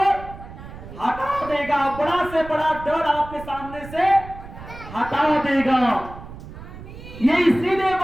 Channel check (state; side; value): noise; right; rumble, 14 dB below the sound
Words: हटा देगा, बड़ा से बड़ा डर आपके सामने से हटा देगा। ये इसीलिए